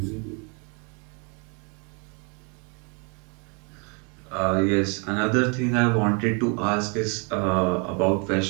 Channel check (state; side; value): quieter; left; 34.4 dB